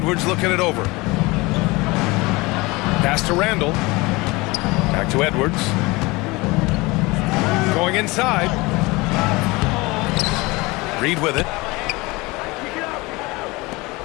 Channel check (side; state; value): right; quieter; 23.3 dB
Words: looking it over. Pass to Randall. Back to Edwards. Going inside. Reed with it.